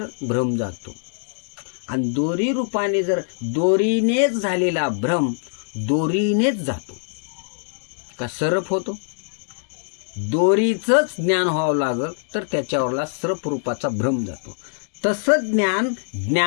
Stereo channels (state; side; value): silent; right; digital silence